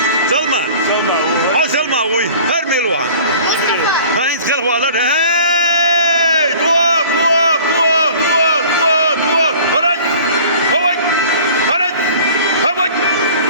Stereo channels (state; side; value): inverted; both; correlation -0.46